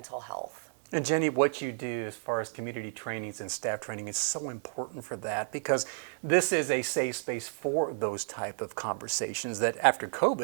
health. And Jeni, what you do as far as community trainings and staff training is so important for that, because this is a safe space for those type of conversations that after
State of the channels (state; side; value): silent; left; 57 dB below the other